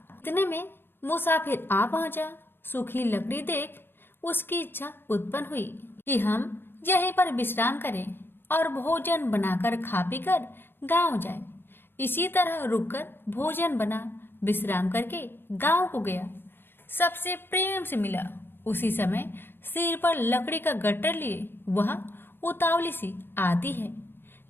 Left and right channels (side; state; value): right; late; 0.10 ms